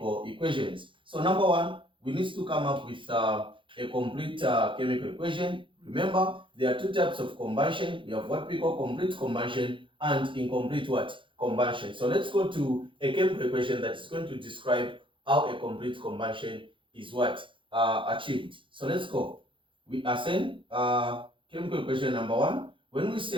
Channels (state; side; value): late; left; 0.25 ms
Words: equations. So number one, we need to come up with a complete chemical equation. Remember, there are two types of combustion. We have what we call complete combustion and incomplete what? Combustion. So let's go to a chemical equation that is going to describe how a complete combustion is what? Achieved. So let's go. We are saying chemical equation number one. When we